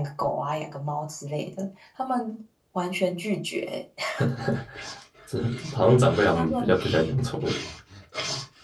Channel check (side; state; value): both; identical; correlation 1.00